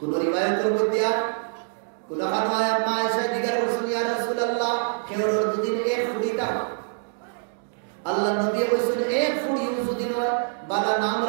রিওয়ায়াতের মধ্যে কোন খানওয়ায়াত মা আয়েশা জিজ্ঞাসা করছেন ইয়া রাসূলুল্লাহ কেউর দুদিন এক ফুড়িটা আল্লাহ নবী বলেছেন এক ফুড়ি যদি নয় বালা নাম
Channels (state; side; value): silent; left; digital silence